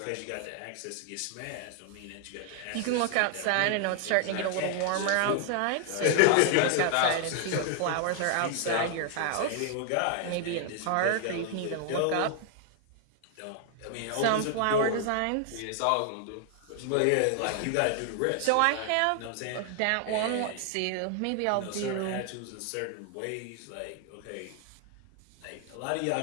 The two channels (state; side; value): different; both; correlation 0.00